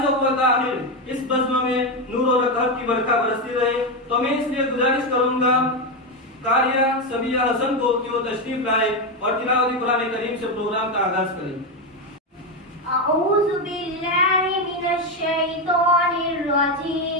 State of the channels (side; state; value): both; normal; correlation 0.10